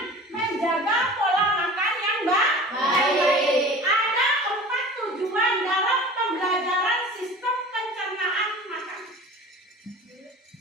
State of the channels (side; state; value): both; normal; correlation 0.39